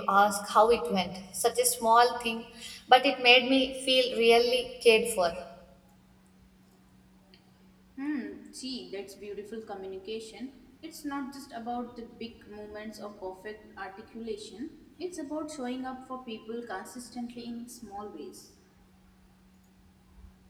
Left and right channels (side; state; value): both; identical; correlation 1.00